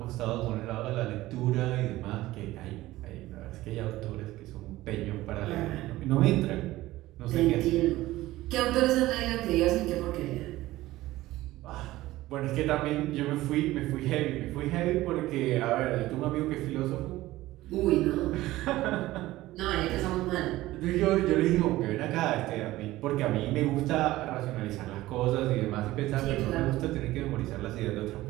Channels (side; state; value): left; quieter; 16.9 dB